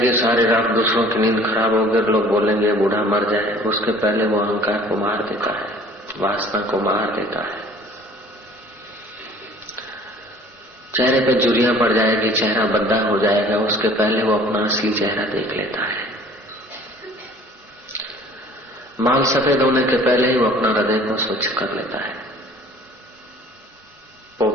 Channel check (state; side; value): normal; both; correlation 0.51